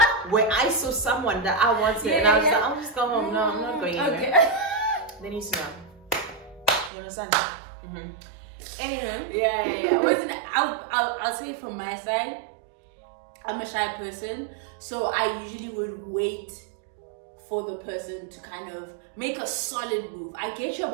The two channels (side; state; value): left; drops out; at 6.9 s